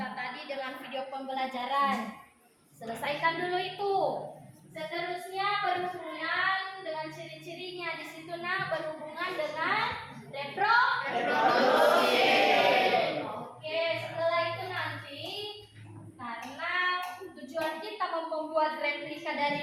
tadi dengan video pembelajaran. Selesaikan dulu itu. Seterusnya berhubungan dengan ciri-cirinya di situ berhubungan dengan reproduksi. Oke, setelah itu nanti karena tujuan kita membuat replika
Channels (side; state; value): both; identical; correlation 1.00